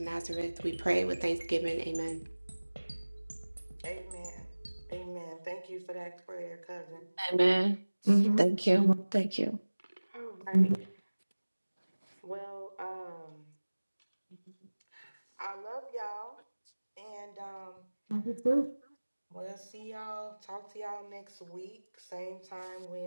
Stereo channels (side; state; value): both; inverted; correlation -1.00